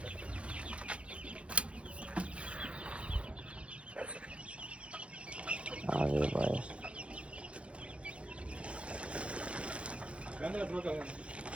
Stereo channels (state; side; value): late; left; 0.060 ms